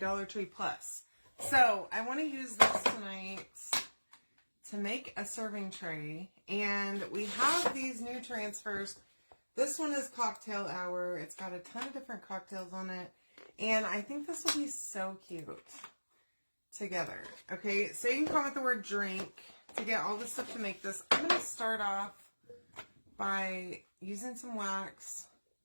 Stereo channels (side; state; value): both; inverted; correlation -1.00